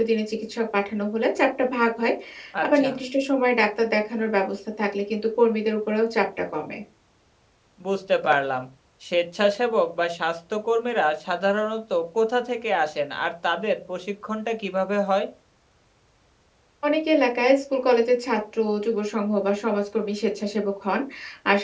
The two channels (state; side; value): identical; both; correlation 1.00